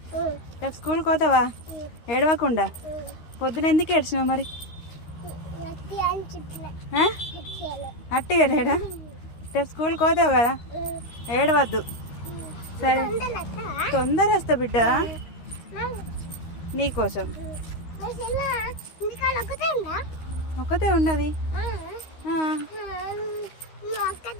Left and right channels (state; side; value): late; right; 13 ms